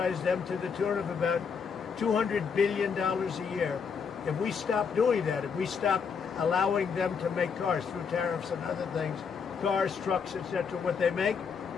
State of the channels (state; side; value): quieter; right; 6.1 dB